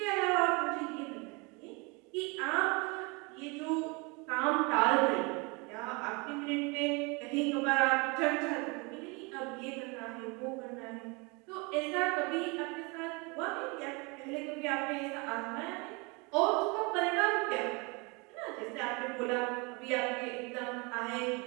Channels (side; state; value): left; quieter; 28.9 dB